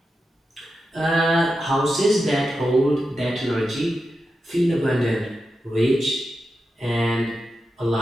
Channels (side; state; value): both; normal; correlation 0.89